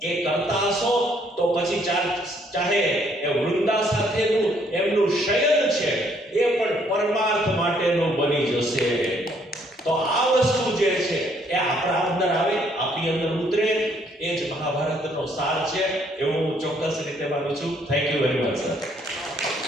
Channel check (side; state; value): both; normal; correlation 0.67